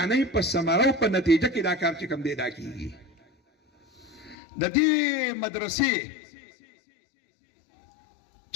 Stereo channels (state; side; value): drops out; right; at 4.4 s